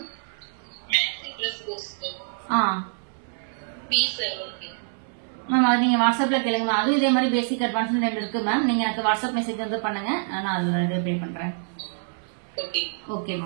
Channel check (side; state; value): left; silent; 61 dB below the other